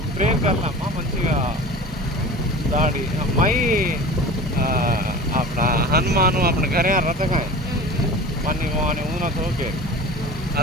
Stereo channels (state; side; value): normal; both; correlation 0.37